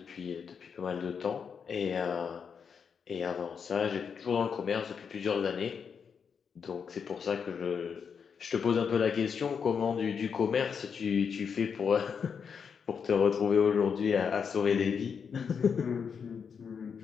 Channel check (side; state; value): right; quieter; 6.5 dB